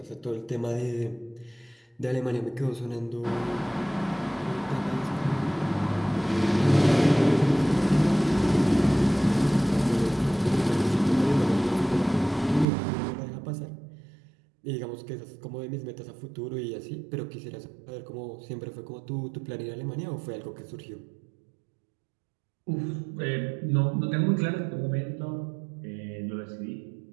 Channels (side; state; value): left; drops out; at 12.7 s